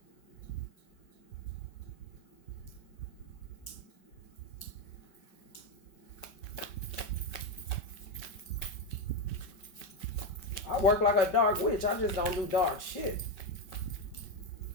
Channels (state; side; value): late; right; 5.3 ms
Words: I work like a dark witch. I just don't do dark shit.